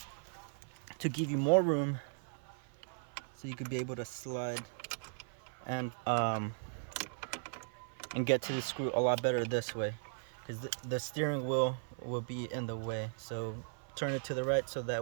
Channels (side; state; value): left; silent; 53 dB below the other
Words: to give you more room, so you could be able to slide and get to the screw a lot better this way, because the steering wheel will be in the way. So turn it to the right so